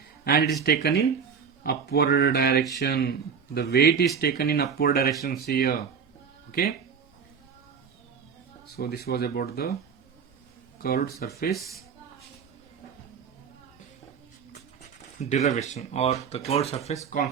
and it is taken in upward direction. The weight is taken in upward direction here. Okay, so this was about the curved surface derivation or the curved surface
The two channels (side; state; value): left; quieter; 6.5 dB